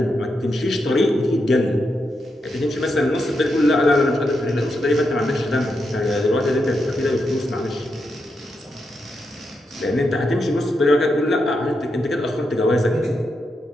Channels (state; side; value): normal; both; correlation 0.84